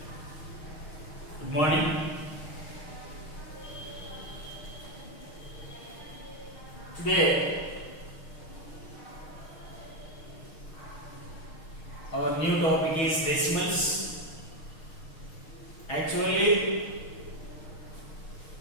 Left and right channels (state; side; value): late; right; 6.4 ms